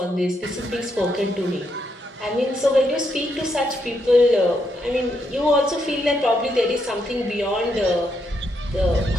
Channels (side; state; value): both; normal; correlation 0.79